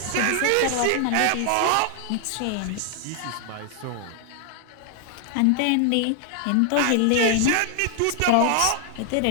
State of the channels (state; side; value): different; both; correlation 0.00